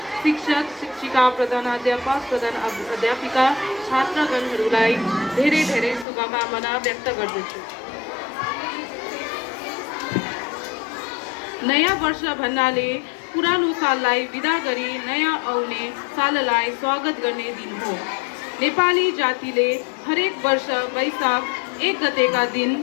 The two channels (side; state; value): right; drops out; at 6.1 s